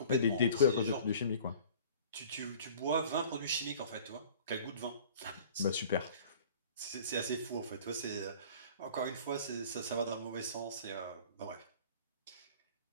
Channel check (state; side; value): inverted; both; correlation -0.47